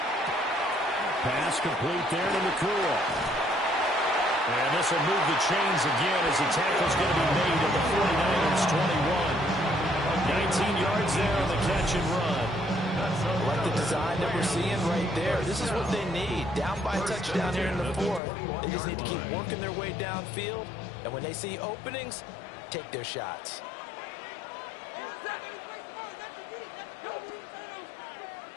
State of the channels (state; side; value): drops out; right; at 18.2 s